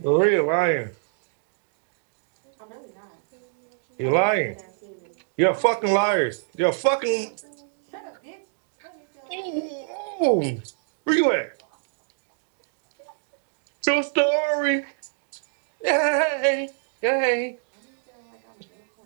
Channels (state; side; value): silent; left; digital silence